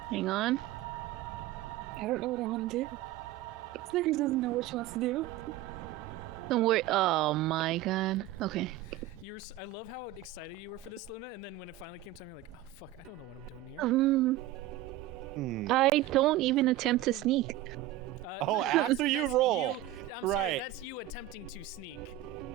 Hang on. I don't know what I want to do. Snickers doesn't know what she wants to do. Don't worry. Oh my god. Okay. I love how excited you were for this, Luna, and then when it finally came time, you're like, oh fuck, I don't know what I'm doing here. I don't even attempt to sneak. No, after you roll. I'm sorry, Right. that's you attempting to sneak.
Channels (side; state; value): left; quieter; 14.0 dB